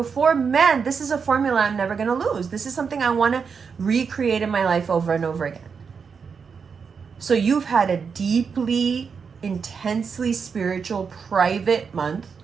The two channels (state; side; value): quieter; left; 5.9 dB